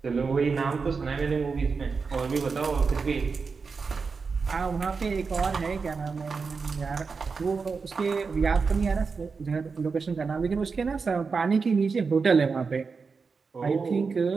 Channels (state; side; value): quieter; left; 4.9 dB